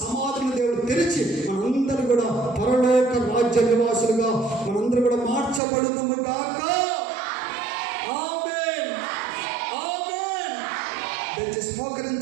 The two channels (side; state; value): left; drops out; at 5.6 s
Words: సమాధులను దేవుడు తెరిచి మనందరూ కూడా పరలోక రాజ్య నివాసులుగా మనందరూ కూడా మార్చబడుదుము గాక. ఆమేన్, ఆమేన్. దయచేసి